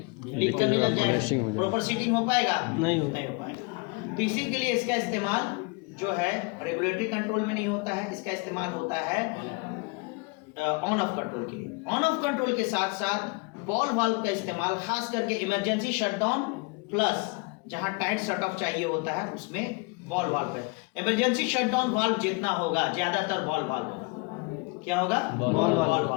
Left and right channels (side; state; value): right; quieter; 29.4 dB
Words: लीक करने लग जाएगा, प्रॉपर सीटिंग हो पाएगा, नहीं हो पाएगा। तो इसी के लिए इसका इस्तेमाल जो है रेगुलेटरी कंट्रोल में नहीं होता है, इसका इस्तेमाल होता है ऑन ऑफ कंट्रोल के लिए। ऑन ऑफ कंट्रोल के साथ साथ बॉल वाल्व का इस्तेमाल खास करके इमरजेंसी शटडाउन प्लस जहां टाइट शट ऑफ चाहिए होता है उसमें बॉल वाल्व है। इमरजेंसी शटडाउन वाल्व जितना होगा ज्यादातर बॉल वाल्व होगा। क्या होगा, बॉल वाल्व